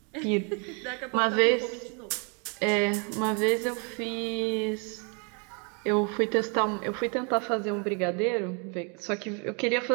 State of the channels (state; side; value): quieter; left; 36.1 dB